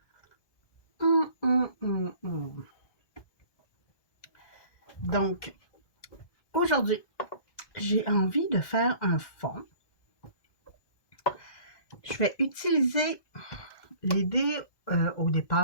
Donc, aujourd'hui, j'ai envie de faire un fond. Je vais utiliser, l'idée au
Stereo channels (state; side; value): late; right; 1.2 ms